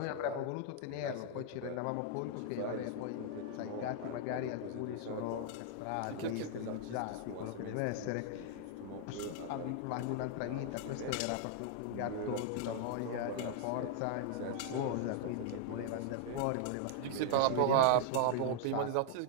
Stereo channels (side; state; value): both; different; correlation 0.00